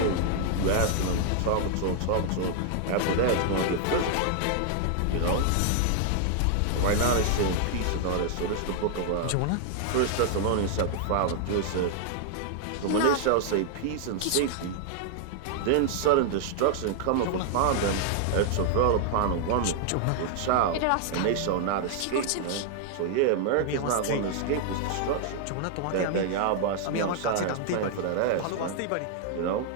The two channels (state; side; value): different; both; correlation 0.00